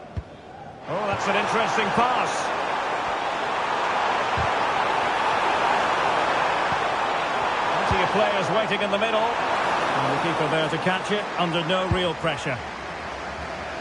Oh, that's an interesting pass. Plenty of players waiting in the middle. And the keeper there to catch it under no real pressure.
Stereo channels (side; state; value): both; identical; correlation 1.00